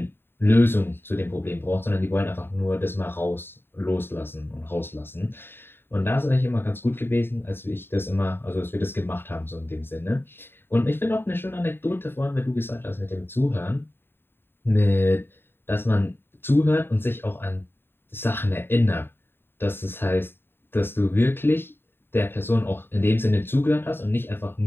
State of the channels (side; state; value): right; late; 0.11 ms